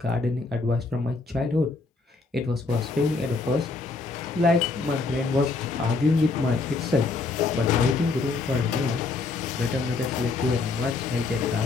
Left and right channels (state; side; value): quieter; right; 3.8 dB